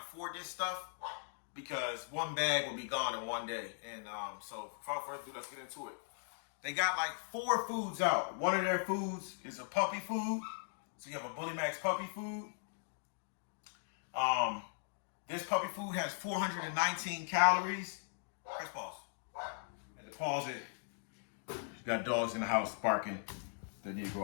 afford this stuff because one bag will be gone in one day. And so without further ado, let's get into it. They got like 4 foods out. One of their foods is a puppy food. So you have a Bully Max puppy food. This puppy food has 419 calories. Press pause. And to pause it, you got dogs in the house barking. They need to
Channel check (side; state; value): right; silent; digital silence